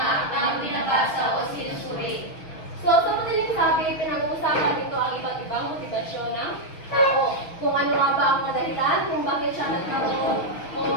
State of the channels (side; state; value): right; late; 6.4 ms